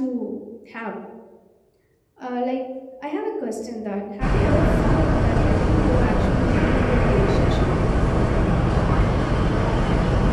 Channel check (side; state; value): both; identical; correlation 1.00